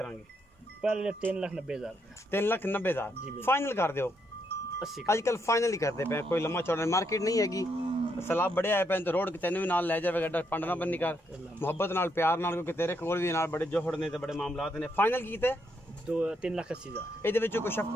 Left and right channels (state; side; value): normal; both; correlation 0.77